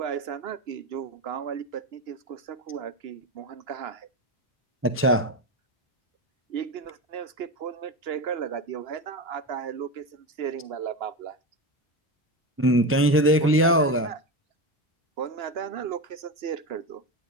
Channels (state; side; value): normal; both; correlation 0.19